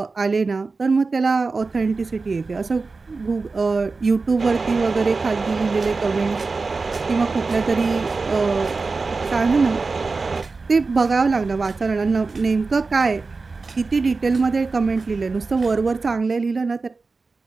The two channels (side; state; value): left; quieter; 4.1 dB